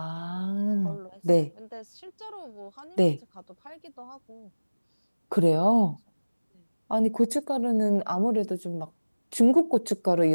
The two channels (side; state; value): both; inverted; correlation -1.00